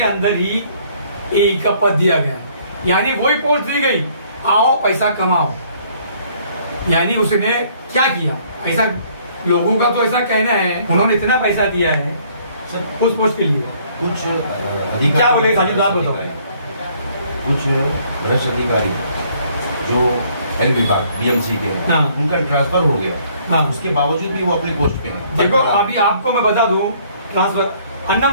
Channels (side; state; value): both; inverted; correlation -0.62